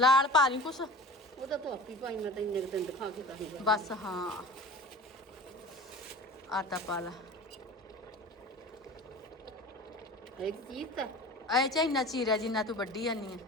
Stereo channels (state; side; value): normal; both; correlation 0.38